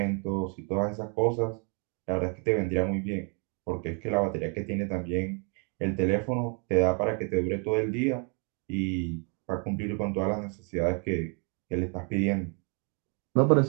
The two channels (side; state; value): left; quieter; 37.1 dB